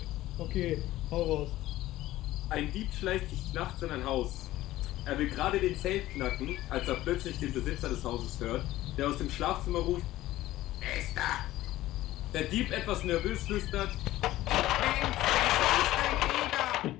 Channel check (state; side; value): quieter; right; 15.7 dB